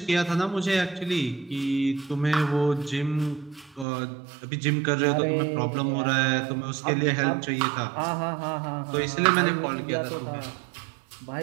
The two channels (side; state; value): left; drops out; at 3.9 s